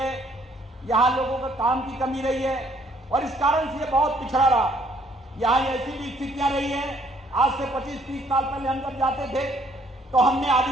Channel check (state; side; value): normal; both; correlation 0.64